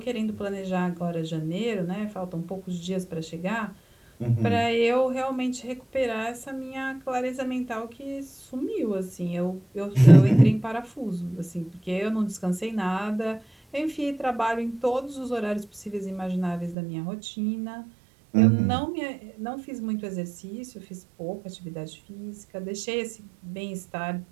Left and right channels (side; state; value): left; drops out; at 16.8 s